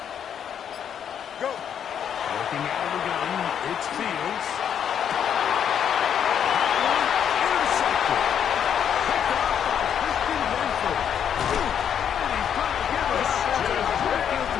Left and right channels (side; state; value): right; quieter; 8.6 dB